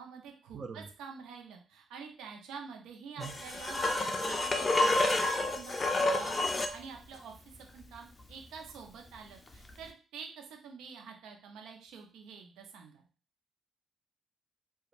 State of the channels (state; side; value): normal; both; correlation 0.82